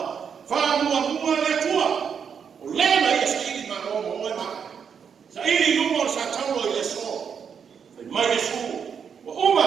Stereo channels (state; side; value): quieter; left; 7.0 dB